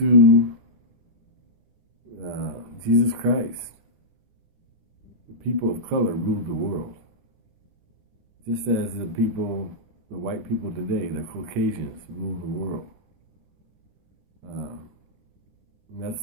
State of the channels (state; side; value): late; left; 9.9 ms